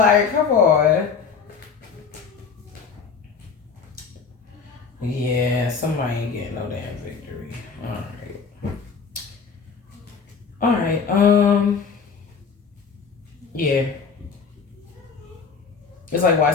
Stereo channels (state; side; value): quieter; right; 5.6 dB